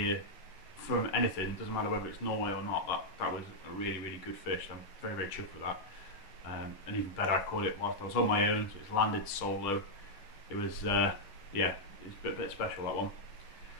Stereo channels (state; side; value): late; right; 10 ms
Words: from anything. Doesn't matter whether it's Norway or not. That was a really, really good fish. I'm very, very chuffed with that. And even better, I caught it whilst I was on my own, so it's landed solo. It was yeah, it was a bit special, that one.